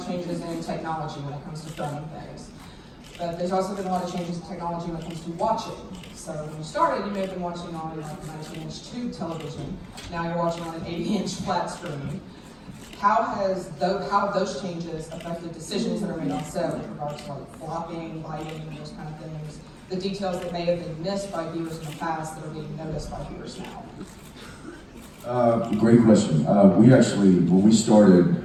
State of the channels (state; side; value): identical; both; correlation 1.00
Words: changes in technology when it comes to filming things. But there's also been a lot of changes in technology when it comes to watching. So when you started, you may have been watching on like a 19-inch tube television. Now you're watching on an 80-inch flat screen. How have those changes affected decisions that are made on set with regards to like blocking, lighting, those kind of things? The details that may have been missed by viewers in the past that are being noticed by viewers now? Great question. We actually, when we started